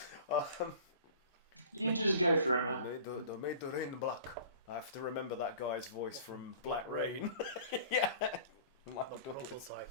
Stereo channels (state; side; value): inverted; both; correlation -0.45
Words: You just go for it, man. Made the rain black. I have to remember that guy's voice from Black Rain. Yeah. My The prototype.